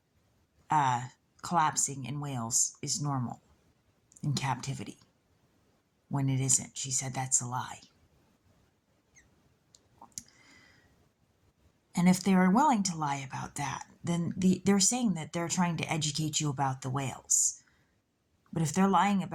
collapsing in whales is normal in captivity, when it isn't. She said that's a lie. And if they are willing to lie about that, then they're saying that they're trying to educate you about the whales. But if they're lying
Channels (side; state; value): both; identical; correlation 1.00